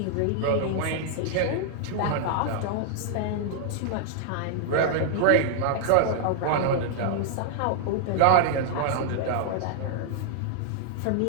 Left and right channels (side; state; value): both; different; correlation -0.01